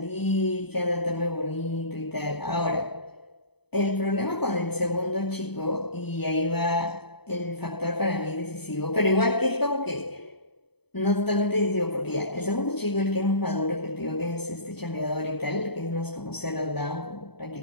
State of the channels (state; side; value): late; right; 0.98 ms